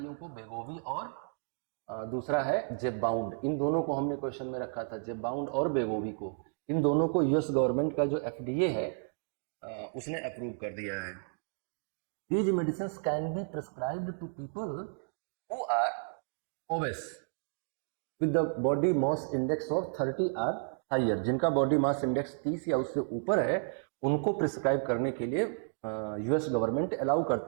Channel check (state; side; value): silent; left; digital silence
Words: को, वेगोवी और दूसरा है जेबबाउंड। इन दोनों को हमने क्वेश्चन में रखा था, जेबबाउंड और वेगोवी को, इन दोनों को यूएस गवर्नमेंट का जो एफडीए है उसने अप्रूव कर दिया है। These medicines can be prescribed to people who are obese with the body mass index of 30 or higher। जिनका बॉडी मास इंडेक्स 30 या उससे ऊपर है उनको प्रिस्क्राइब करने के लिए यूएस गवर्नमेंट अलाउ